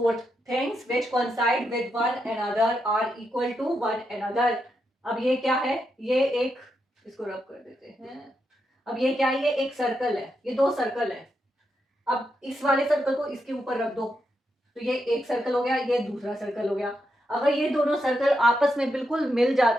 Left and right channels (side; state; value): both; normal; correlation 0.83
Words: things which coincide with one another are equal to one another. अब ये क्या है, ये एक, इसको रब कर देते हैं। अब ये क्या है, ये एक सर्कल है, ये दो सर्कल है। अब इस वाले सर्कल को इसके ऊपर रख दो, तो ये एक सर्कल हो गया, ये दूसरा सर्कल हो गया। अगर ये दोनों सर्कल आपस में बिल्कुल मिल